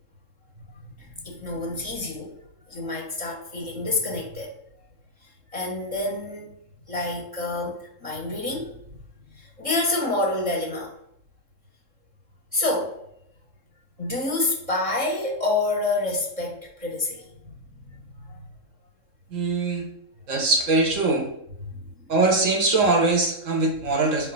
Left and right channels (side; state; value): left; late; 3.7 ms